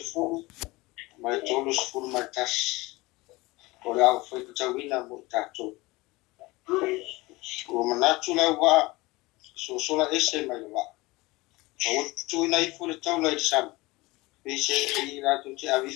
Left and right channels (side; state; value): right; quieter; 21.7 dB